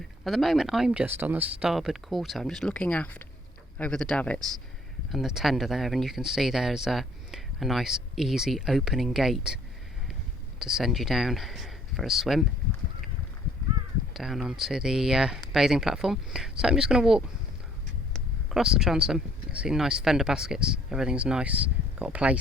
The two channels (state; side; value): normal; both; correlation 0.60